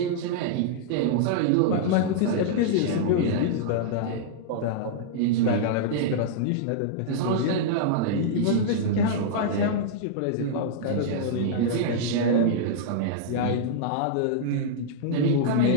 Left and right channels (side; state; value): both; different; correlation -0.02